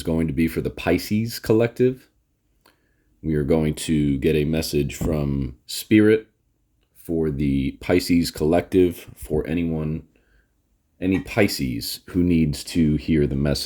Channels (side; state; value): both; identical; correlation 1.00